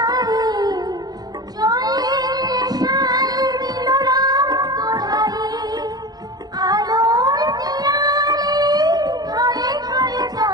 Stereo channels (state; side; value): late; left; 0.19 ms